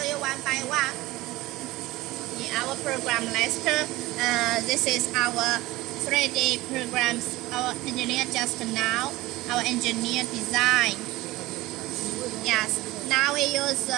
you one by one. In our program list, this is our 3D programs. Our engineer just now. Our engineer design. Yes. Now we use.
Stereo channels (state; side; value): quieter; left; 18.6 dB